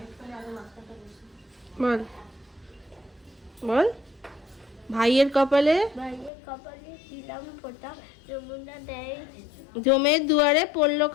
বল বল। ভাইয়ের কপালে ভাইয়ের কপালে দিলাম ফোঁটা, যমুনা দেয় জমের দুয়ারে পড়লো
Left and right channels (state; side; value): drops out; right; at 6.3 s